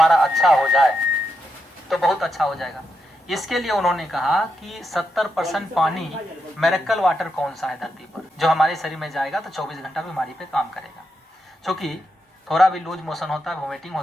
अच्छा हो जाए तो बहुत अच्छा हो जाएगा। इसके लिए उन्होंने कहा कि 70% पानी मिरेकल वाटर कौन सा है धरती पर, जो हमारे शरीर में जाएगा तो 24 घंटा बीमारी पे काम करेगा। क्योंकि थोड़ा भी लूज मोशन होता है, वोमिटिंग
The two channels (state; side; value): normal; both; correlation 0.84